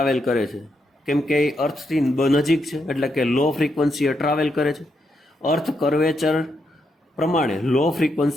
કરે છે, કેમ કે એ અર્થથી નજીક છે એટલે કે લો ફ્રીક્વન્સીએ ટ્રાવેલ કરે છે. અર્થ કર્વેચર પ્રમાણે લો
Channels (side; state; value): both; normal; correlation 0.80